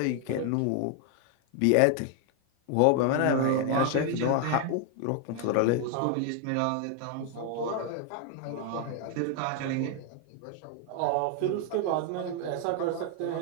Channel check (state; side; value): different; both; correlation 0.00